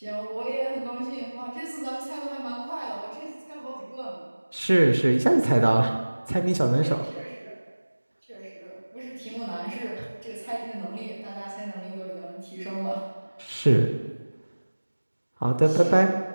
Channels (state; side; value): inverted; both; correlation -1.00